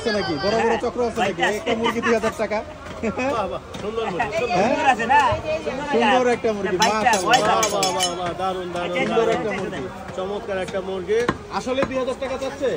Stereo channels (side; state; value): both; identical; correlation 1.00